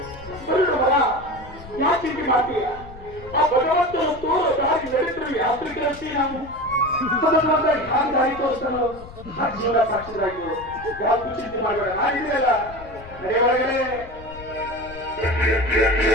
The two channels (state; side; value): noise; left; rumble, 17 dB below the sound